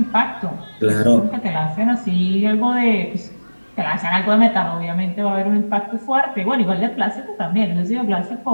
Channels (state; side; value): inverted; both; correlation -1.00